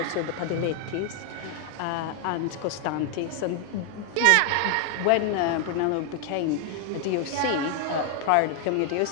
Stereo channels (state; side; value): different; both; correlation 0.00